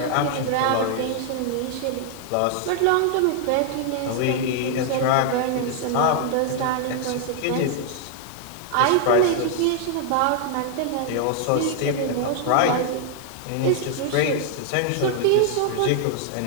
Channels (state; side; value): different; both; correlation 0.00